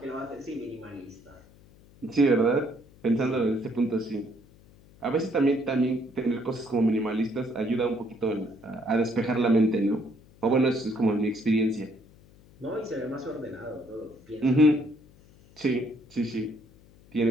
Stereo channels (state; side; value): noise; left; hum, 26 dB below the sound